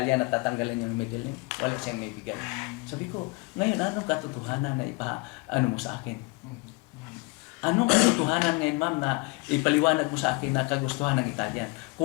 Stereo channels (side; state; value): right; quieter; 26.9 dB